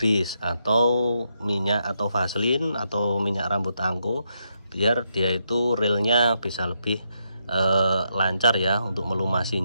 atau minyak atau vaselin atau minyak rambut angko, biar dia itu realnya bisa lebih lancar ya untuk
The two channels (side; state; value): both; inverted; correlation -0.81